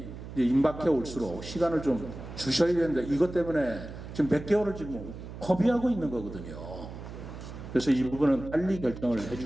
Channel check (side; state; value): right; noise; hum, 11 dB below the sound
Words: 임박해 올수록 시간을 좀 주셔야 되는데 이것 때문에 지금 몇 개월을 지금 허비하고 있는 거거든요. 그래서 이 부분은 빨리 결정을